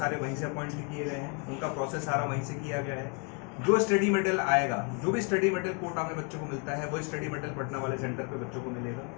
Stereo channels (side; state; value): right; quieter; 34.7 dB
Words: वहीं से अपॉइंट भी किए गए हैं, उनका प्रोसेस सारा वहीं से किया गया है। जो स्टडी मटेरियल आएगा, जो भी स्टडी मटेरियल कोटा में बच्चों को मिलता है, वो स्टडी मटेरियल पटना वाले सेंटर पे बच्चों को मिलेगा।